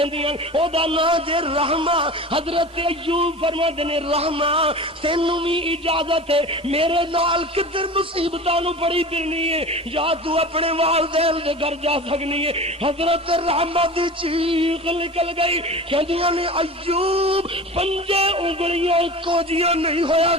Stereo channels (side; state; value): both; normal; correlation 0.35